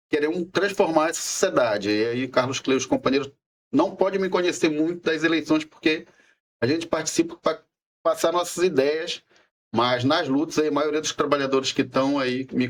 queremos transformar essa sociedade. E aí Carlos Clay, os companheiros não podem me conhecer muito das eleições, porque a gente participa para passar nossas ideias, mas nas lutas aí, a maioria dos trabalhadores que estão aí me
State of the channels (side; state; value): both; identical; correlation 1.00